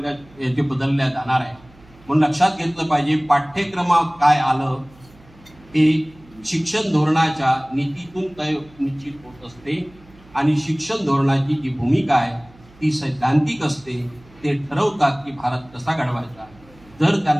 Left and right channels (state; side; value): noise; right; hum, 26 dB below the sound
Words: याचे बदलल्या जाणार आहे. म्हणून लक्षात घेतलं पाहिजे पाठ्यक्रमात काय आलं हे शिक्षण धोरणाच्या नीतीतून तय निश्चित होत असते आणि शिक्षण धोरणाची जी भूमिका आहे ती सैद्धांतिक असते. ते ठरवतात की भारत कसा घडवायचा. जर